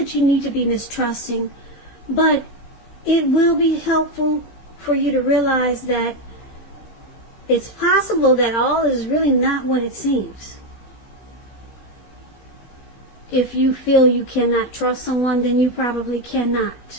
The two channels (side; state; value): right; late; 15 ms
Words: you need to be mistrusting, but it will be helpful for you to realize that it's possible that all is really not what it seems. If you feel you cannot trust someone, then you probably